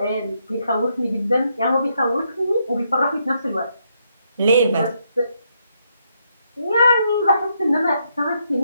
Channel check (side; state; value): both; inverted; correlation -0.77